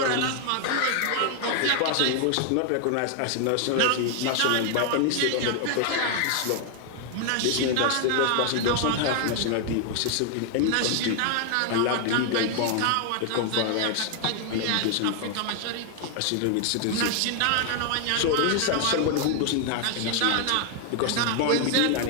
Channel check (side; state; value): both; different; correlation 0.00